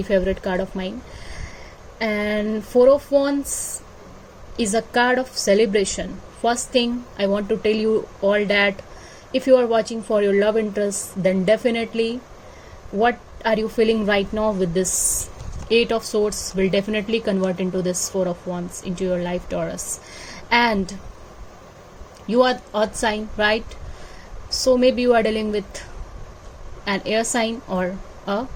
favorite card of mine. And 4 of Wands is a card of celebration. First thing I want to tell you all that if you are watching for your love interest, then definitely what are you feeling right now with this 8 of Swords will definitely convert into this 4 of Wands into your life, Taurus. And you are earth sign, right? So maybe you are dealing with an air sign or a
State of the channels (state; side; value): identical; both; correlation 1.00